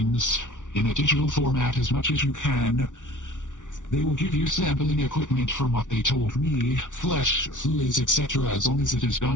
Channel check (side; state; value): right; late; 0.87 ms